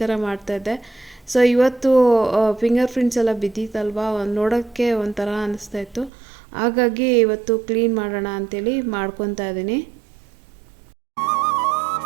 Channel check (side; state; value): left; drops out; at 6.1 s